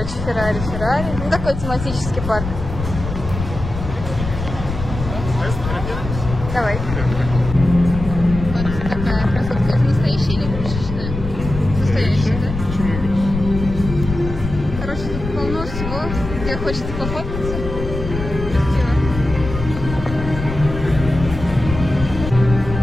Феррари. Ну, такой тематический парк. Давай. Вот такая красотка. Это настоящая или игрушечная? Настоящая, да? Почему игрушечная? Короче, тут полно всего, где хочется пофоткаться. Красиво.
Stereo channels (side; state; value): left; noise; rumble, 7 dB below the sound